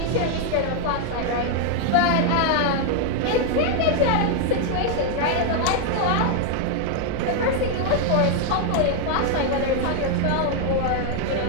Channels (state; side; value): different; both; correlation 0.00